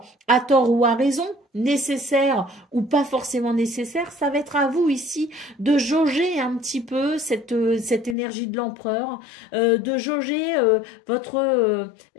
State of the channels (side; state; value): right; drops out; at 8.2 s